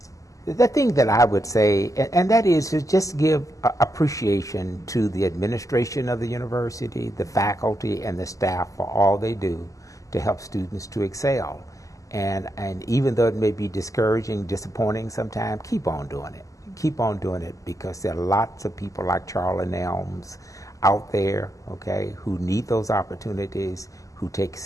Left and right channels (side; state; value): right; late; 0.16 ms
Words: The thing that I would say, and that is to just give appreciation to the administration of the university, the faculty, and the staff for all they do to help students to excel. And even though it may be discouraging, disappointing sometimes, keep on doing it. Keep on doing it, because there are lots of people like Charlie Nelms out there, okay, who need those opportunities, who take